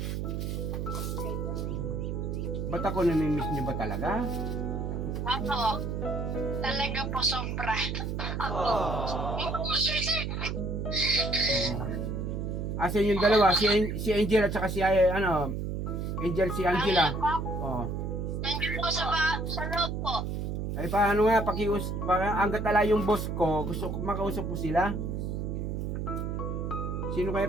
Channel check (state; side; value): noise; right; hum, 2 dB below the sound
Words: Ba't ako namimiss nyo ba talaga? Ako, talaga po sobra. Ako. Asan yung dalawa? Si Angel at saka si Angel, si Angela. Nandiyan po sa loob po. Ay paano nga, hanggat ala yung boss ko, gusto ko makausap ko sila. Sino